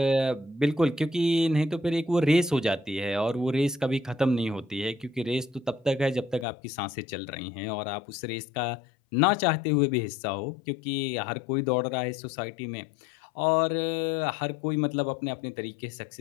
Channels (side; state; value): right; drops out; at 6.5 s